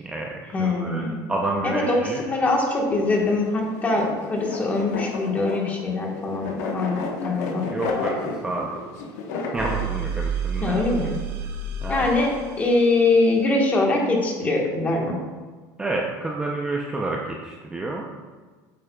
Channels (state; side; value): normal; both; correlation 0.59